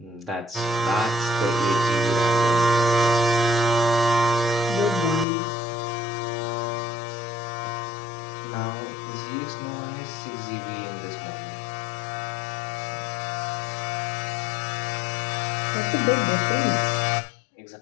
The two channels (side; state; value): right; drops out; at 5.2 s